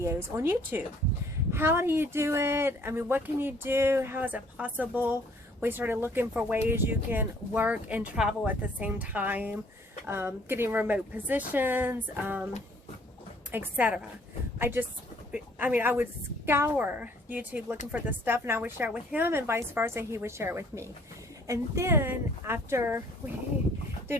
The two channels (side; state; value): both; normal; correlation 0.60